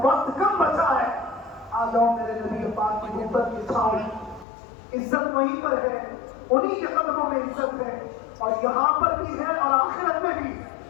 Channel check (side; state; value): right; drops out; at 4.5 s